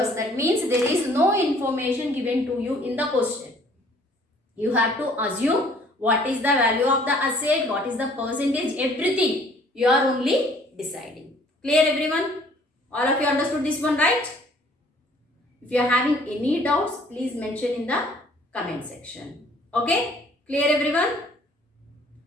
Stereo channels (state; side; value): normal; both; correlation 0.57